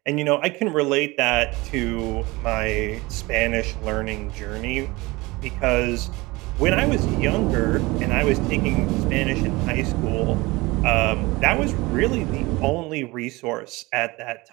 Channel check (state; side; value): quieter; left; 22.5 dB